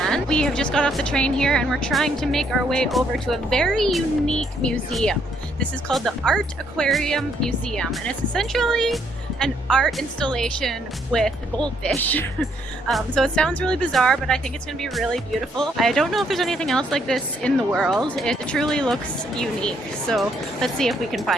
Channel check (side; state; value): both; normal; correlation 0.71